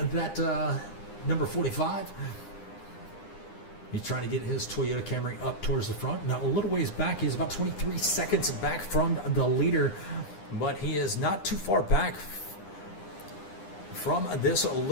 that number 45. He's trying to get his Toyota Camry up towards the front. Now, a little ways back. He's about 23 seconds back from the leader, but he is not too far back from this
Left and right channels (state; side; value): late; right; 9.9 ms